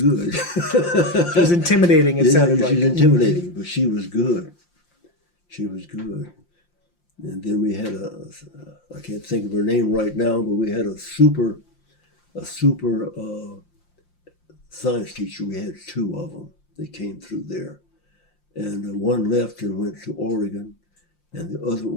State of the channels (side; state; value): right; late; 5.7 ms